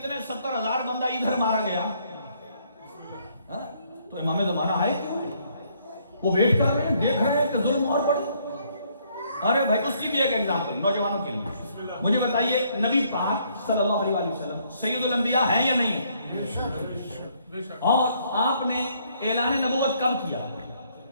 70,000 بندہ ادھر مارا گیا. تو امام زمانہ آئے کیوں؟ وہ ویٹ کر رہے ہیں، دیکھ رہے ہیں کہ ظلم اور بڑھے. ارے بھائی، اس کی بھی ایک ایگزامپل نوجوانوں کے لیے. مجھے بتائیے، نبی پاک صلی اللہ علیہ وسلم سید الانبیاء ہیں یا نہیں؟ اور آپ نے اعلان نبوت کب کیا؟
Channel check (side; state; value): both; inverted; correlation -0.68